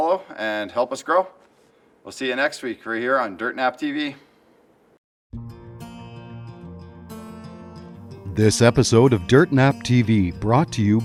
and help us grow. We'll see you next week right here on DirtNap TV. This episode of Dirt Nap TV brought to you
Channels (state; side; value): identical; both; correlation 1.00